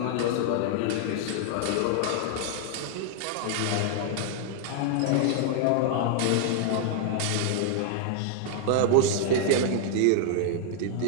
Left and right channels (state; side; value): different; both; correlation 0.00